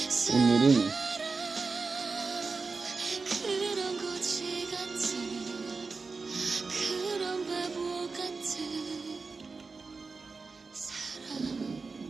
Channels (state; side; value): quieter; left; 4.3 dB